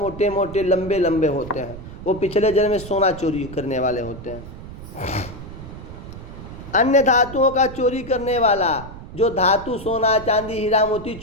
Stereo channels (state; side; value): noise; right; rumble, 13 dB below the sound